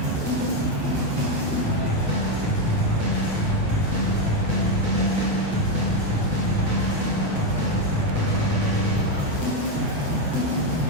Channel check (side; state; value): left; late; 8.0 ms